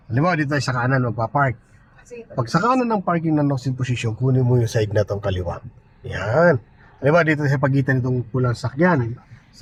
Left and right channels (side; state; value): both; identical; correlation 1.00